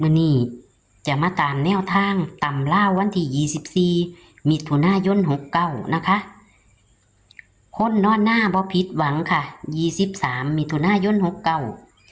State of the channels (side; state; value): both; identical; correlation 1.00